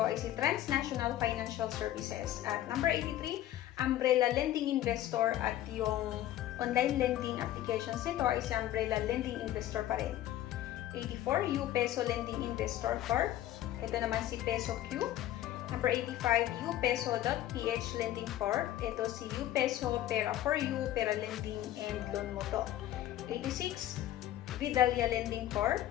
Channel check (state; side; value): quieter; right; 13.3 dB